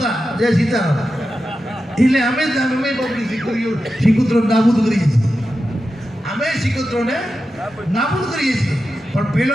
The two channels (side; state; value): both; normal; correlation 0.91